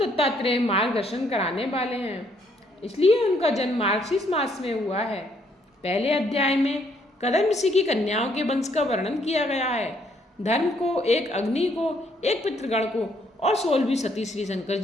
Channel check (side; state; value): both; normal; correlation 0.69